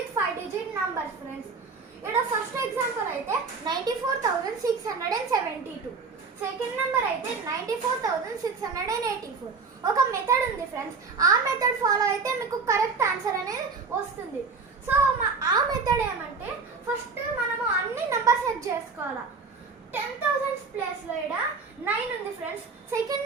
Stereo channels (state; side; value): quieter; left; 4.7 dB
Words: 5 digit numbers, friends. Ida first example aithe 94,672. Second number అయితే 94,684. ఒక method ఉంది friends, ఆ method follow అయితే మీకు correct answer అనేది వస్తుంది. So ఆ method ఏమంటే ఫస్ట్ మనము అన్ని నెంబర్ సెట్ చేసుకోవాలా. 10,000 ప్లేస్లో ఇక్కడ 9 ఉంది ఫ్రెండ్స్. సెకండ్